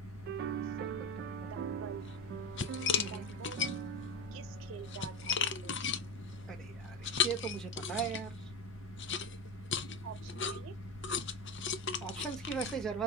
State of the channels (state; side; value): noise; left; hum, 22 dB below the sound